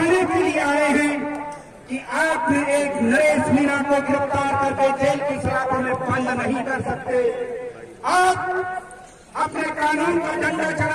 के लिए आए हैं कि आपने एक नरेश मीणा को गिरफ्तार करके जेल की सलाखों में बंद नहीं कर सकते। आप अपने कानून का झंडा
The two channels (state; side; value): identical; both; correlation 1.00